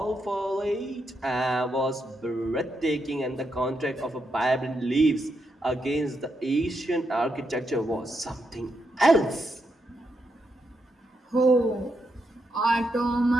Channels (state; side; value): normal; both; correlation 0.82